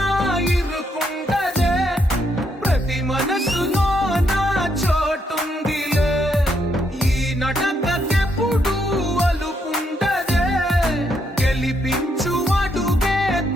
ఇరుకుండదే ప్రతి మనసులో నా చోటుందిలే ఈ నటకెప్పుడు అలుకుండదే గెలిపించు అడుగే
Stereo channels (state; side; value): normal; both; correlation 0.76